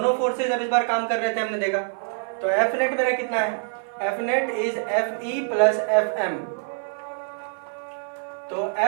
फोर्सेज अब इस बार काम कर रहे थे, हमने देखा। तो एफ नेट मेरा कितना है, F net is F E plus F M. तो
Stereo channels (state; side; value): silent; left; 57 dB below the other